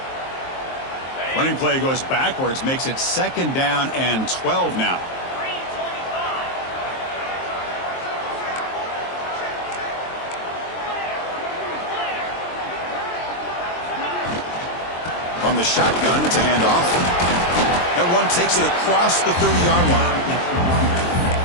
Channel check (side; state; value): right; late; 23 ms